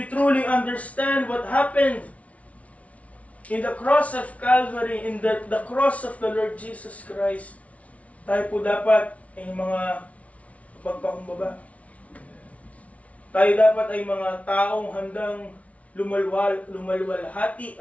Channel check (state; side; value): late; right; 0.066 ms